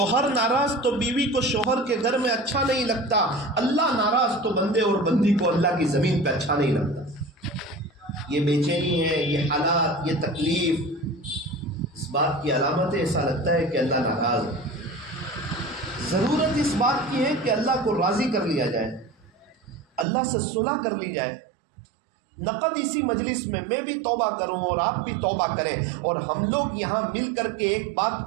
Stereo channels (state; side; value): drops out; left; at 20.1 s